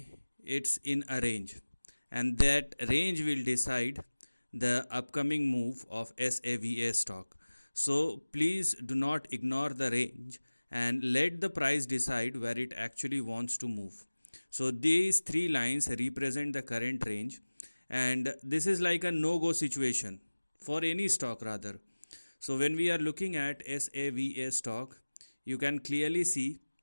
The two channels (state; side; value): inverted; both; correlation -1.00